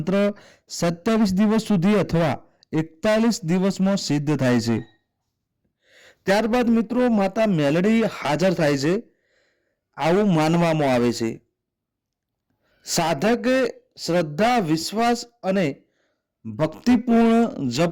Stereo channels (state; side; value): identical; both; correlation 1.00